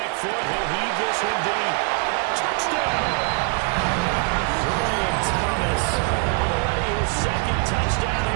foot, he'll heave this one deep. Touchdown! Brian Thomas. Already his 2nd touchdown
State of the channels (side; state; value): left; quieter; 33.1 dB